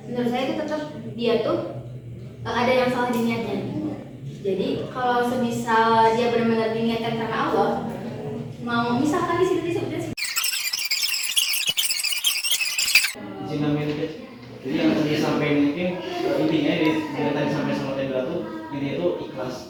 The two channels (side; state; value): both; identical; correlation 1.00